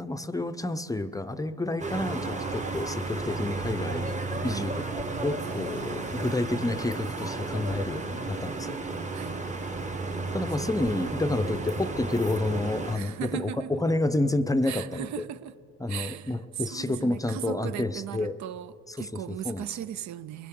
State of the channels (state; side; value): normal; both; correlation 0.72